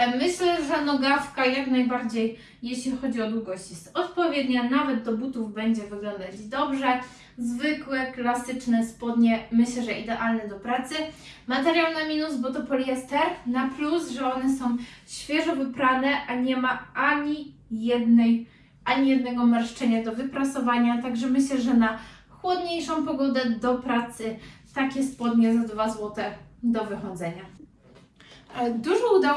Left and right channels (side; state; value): both; identical; correlation 1.00